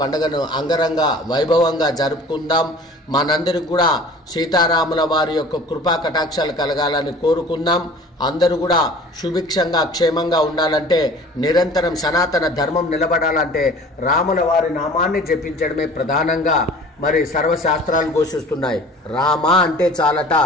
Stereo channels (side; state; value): both; normal; correlation 0.45